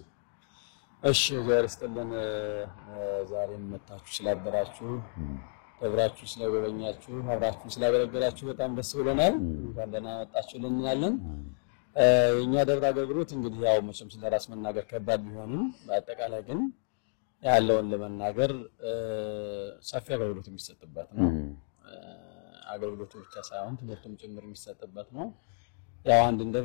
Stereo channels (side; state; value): right; silent; digital silence